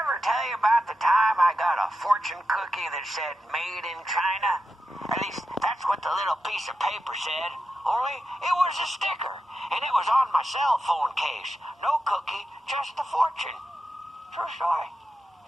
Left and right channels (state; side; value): normal; both; correlation 0.89